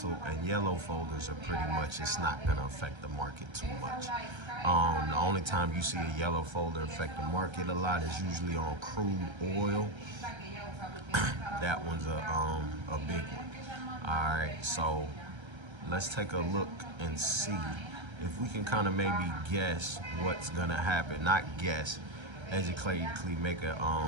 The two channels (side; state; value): left; late; 1.3 ms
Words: and yellow folders are pretty much, it's not going to affect the market too much. The only time you see a yellow folder affect the market a lot is usually on crude oil. That one's a big one. All right, so let's take a look and see if we can kind of maybe guess what's going to happen. Not guess, educatively make a